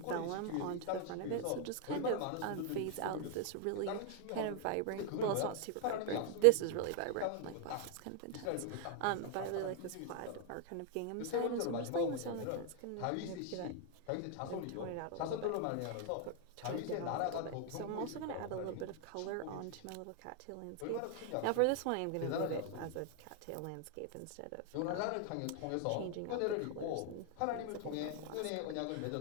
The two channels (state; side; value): different; both; correlation 0.00